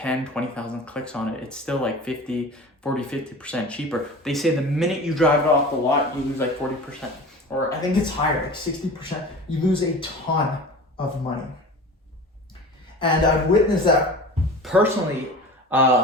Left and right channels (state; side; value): normal; both; correlation 0.36